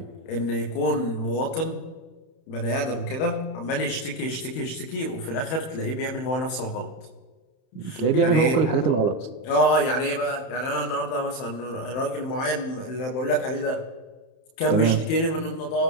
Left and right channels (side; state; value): right; late; 31 ms